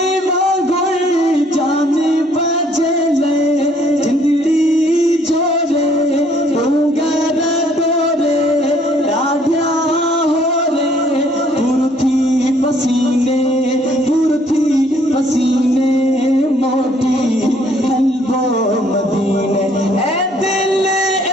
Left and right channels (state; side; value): normal; both; correlation 0.63